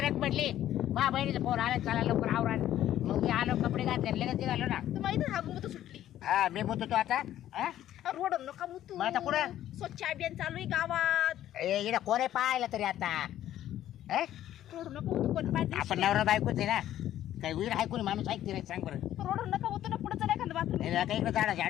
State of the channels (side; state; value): right; quieter; 12.4 dB